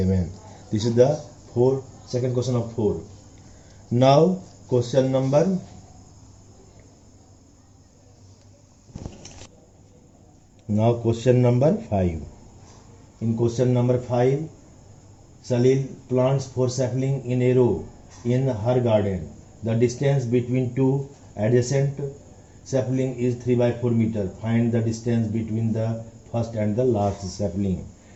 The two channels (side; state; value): both; identical; correlation 1.00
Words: This is the second question of 4. Now question number Now question number 5. In question number 5, Salil plants 4 saplings in a row in her garden. The distance between two adjacent saplings is 3 by 4 meter. Find the distance between the first and the last sapling.